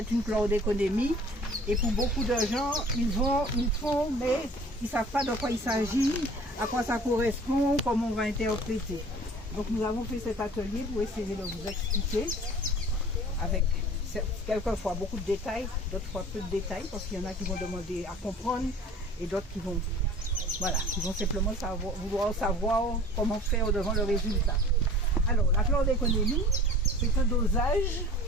une chlordéconémie, et pour beaucoup de gens, ils font, mais ils ne savent pas de quoi il s'agit, à quoi ça correspond, comment on va interpréter. Donc nous avons fait cet atelier pour essayer de vous expliquer, avec quelquefois beaucoup de détails, d'autres fois peu de détails, parce qu'il y en a qui vont demander à comprendre, et d'autres qui vont simplement vouloir savoir comment faire devant le résultat. Alors, la chlordéconémie, c'est un dosage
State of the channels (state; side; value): normal; both; correlation 0.46